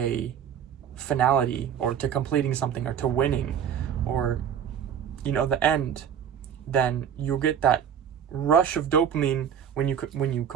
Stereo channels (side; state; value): left; quieter; 8.5 dB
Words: finality, or to completing something, or to winning, or, you know, the end, then you'll get that rush of dopamine when you